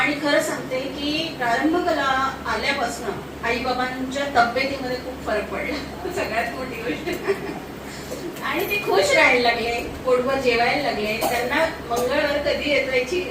खरं सांगते की प्रारंभ कला आल्यापासून आईबाबांच्या तब्येतीमध्ये खूप फरक पडला, सगळ्यात मोठी गोष्ट. आणि ते खुश राहायला लागले, पोटभर जेवायला लागले. त्यांना मंगळवार कधी येतो याची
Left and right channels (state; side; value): identical; both; correlation 1.00